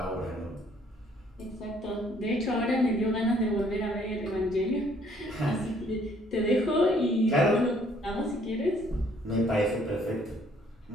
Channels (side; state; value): both; normal; correlation 0.63